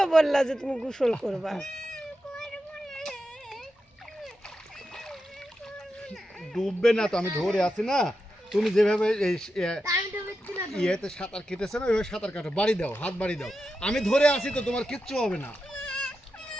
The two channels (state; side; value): normal; both; correlation 0.89